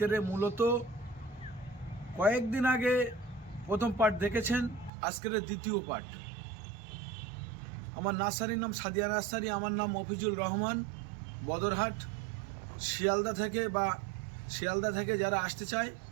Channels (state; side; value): drops out; left; at 4.9 s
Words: মূলত কয়েকদিন আগে প্রথম পার্ট দেখেছেন, আজকের দ্বিতীয় পার্ট। আমার নার্সারির নাম সাদিয়া নার্সারি, আমার নাম মফিজুল রহমান, বদরহাট, শিয়ালদা থেকে যারা আসতে চায়,